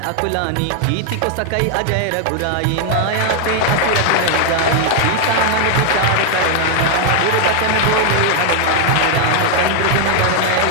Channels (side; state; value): both; different; correlation 0.00